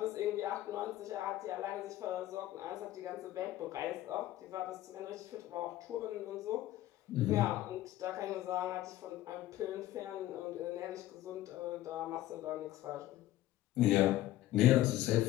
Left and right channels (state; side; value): quieter; right; 14.8 dB